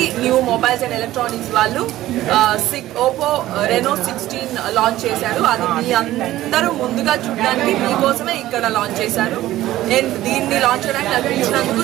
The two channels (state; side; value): quieter; left; 15.0 dB